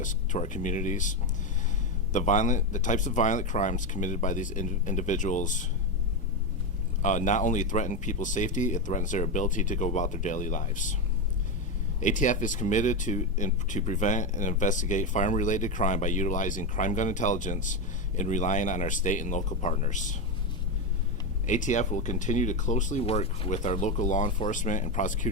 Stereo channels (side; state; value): both; normal; correlation 0.11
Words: to our communities The types of violent crimes committed by these individuals not only threaten people's safety, it threatens their ability to go about their daily lives. ATF is committed to prevent and investigate firearm-related crime by utilizing crime gun intelligence and relying on our state and local partners. ATF will continue to closely work with our local law enforcement and